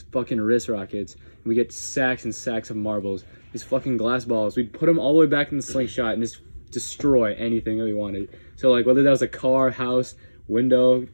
fucking wrist rockets, and we get sacks and sacks of marbles. These fucking glass balls. We'd put them all the way back in the slingshot and just destroy anything that we wanted. So like whether that was a car, house, window,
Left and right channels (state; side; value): inverted; both; correlation -1.00